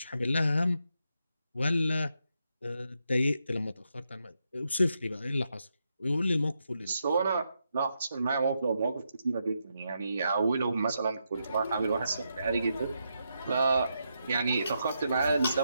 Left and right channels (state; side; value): inverted; both; correlation -0.82